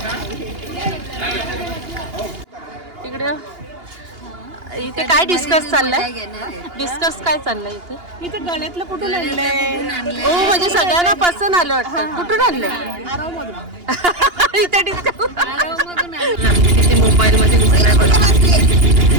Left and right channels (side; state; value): left; late; 2.8 ms